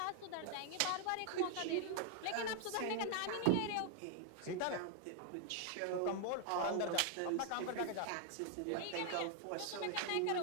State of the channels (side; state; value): both; different; correlation 0.00